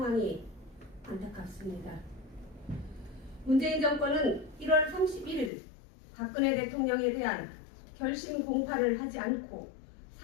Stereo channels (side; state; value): right; drops out; at 5.5 s